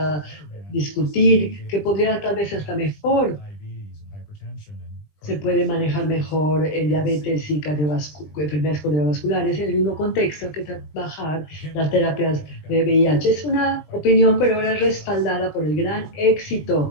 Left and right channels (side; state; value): right; late; 20 ms